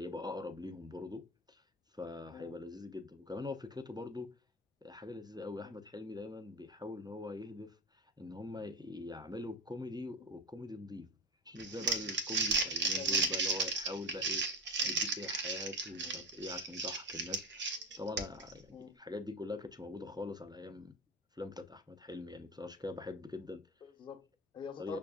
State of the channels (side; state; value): both; normal; correlation 0.22